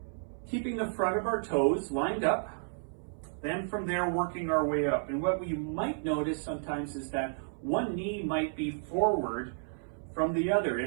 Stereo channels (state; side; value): silent; left; 56 dB below the other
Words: keeping the front of our toes lined up, then from there working our way up. And what we might notice sometimes is that one knee might be forward from the other